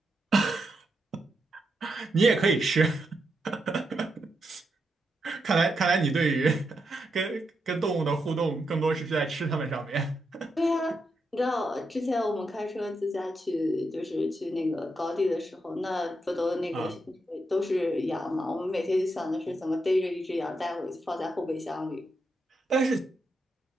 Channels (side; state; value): both; normal; correlation 0.83